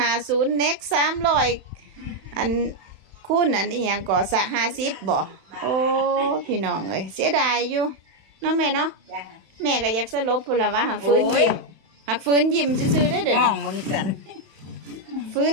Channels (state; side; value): late; left; 31 ms